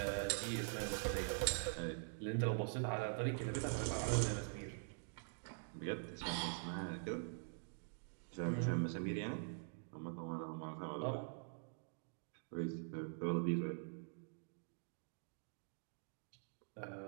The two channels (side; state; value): left; silent; digital silence